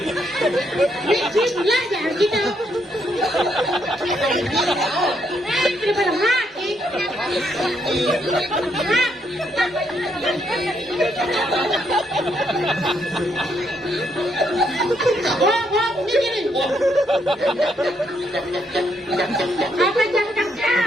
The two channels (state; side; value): normal; both; correlation 0.75